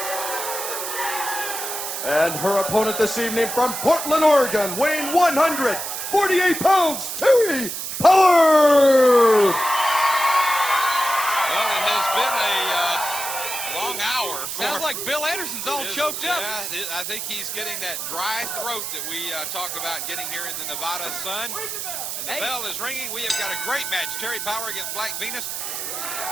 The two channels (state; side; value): noise; right; hiss, 5 dB below the sound